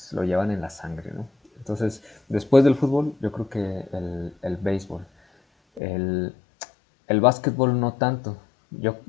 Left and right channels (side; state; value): right; drops out; at 5.8 s